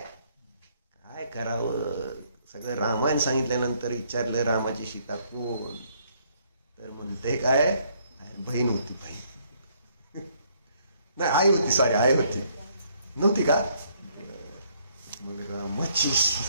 काय करावं? सगळं रामायण सांगितल्यानंतर विचारलं रामाची सीता कोण? तर म्हणते काय? बहीण होती. बहीण नाही, आई होती. सॉरी, आई होती. नव्हती का? मग रामाची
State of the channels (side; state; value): both; inverted; correlation -0.67